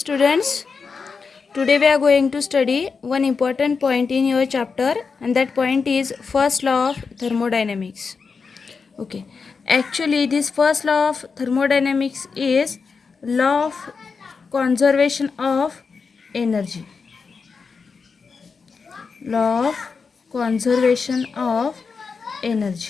today we are going to study one important point in your chapter, and that point is first law of thermodynamics. Okay, actually this first law of thermodynamics is law of conservation of energy. Law of conservation of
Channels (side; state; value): right; quieter; 5.1 dB